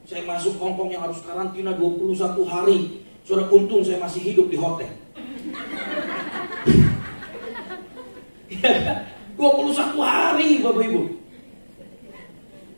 Saya masuk Hong Kong yang harus karantina 21 hari. Saudara, untung saya masih hidup di hotel. 21 hari Bapak Ibu.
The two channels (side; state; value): both; inverted; correlation -1.00